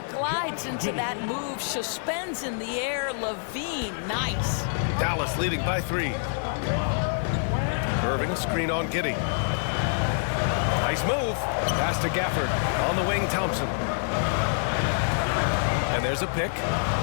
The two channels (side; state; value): right; silent; 61 dB below the other